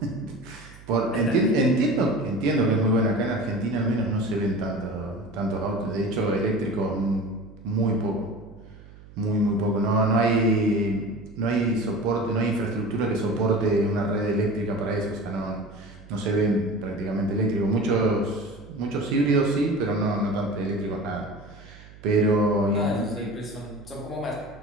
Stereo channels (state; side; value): noise; right; hum, 20 dB below the sound